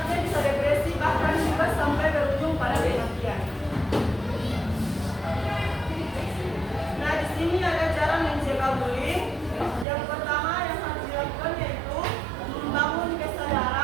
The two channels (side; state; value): left; drops out; at 9.9 s